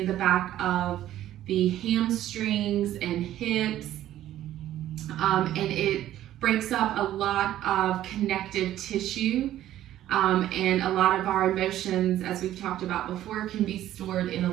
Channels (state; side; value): quieter; left; 12.9 dB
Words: the back of the hamstrings and hips, and it breaks up a lot of connective tissue, and a lot of our emotions, as we've talked about before, can be stored in